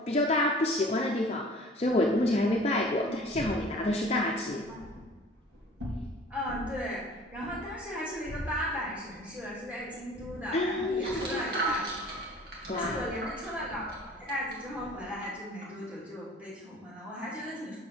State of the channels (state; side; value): normal; both; correlation 0.47